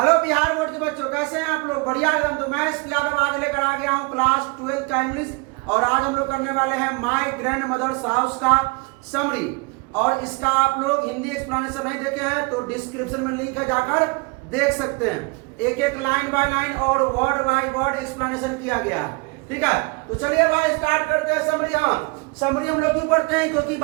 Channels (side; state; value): left; quieter; 28.6 dB